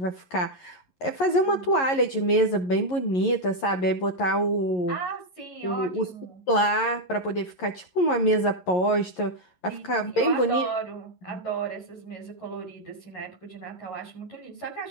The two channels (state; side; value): late; right; 11 ms